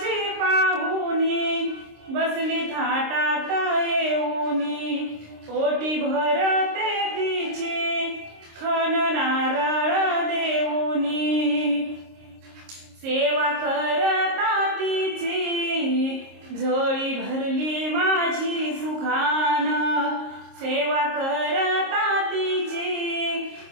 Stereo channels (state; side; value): late; left; 26 ms